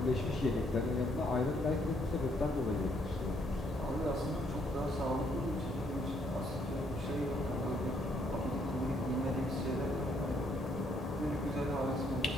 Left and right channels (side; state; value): both; normal; correlation 0.70